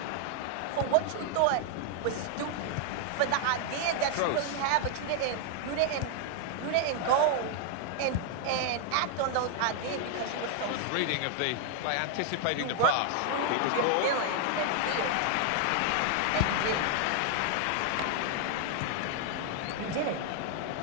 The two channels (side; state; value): both; different; correlation 0.00